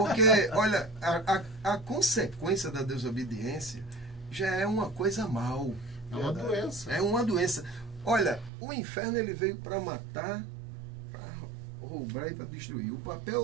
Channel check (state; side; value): drops out; left; at 8.5 s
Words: olha, a consequência da desobediência já é uma coisa mal. É uma doença. É uma doença. Olha, o inferno ele veio para matar, para roubar e para destruir. O